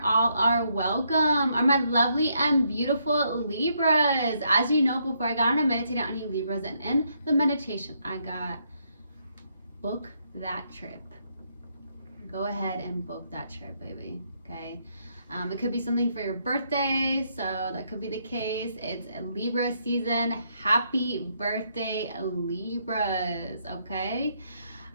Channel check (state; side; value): inverted; both; correlation -0.75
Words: All are welcome. Are my lovely and beautiful Libras. As you know, before I got on, I meditated on you Libras, and in the meditation, I got book that trip. Go ahead and book that trip, baby. Okay. It could be something for your birthday, so that could be the case. It's Libra season. Happy birthday, Libras. Okay.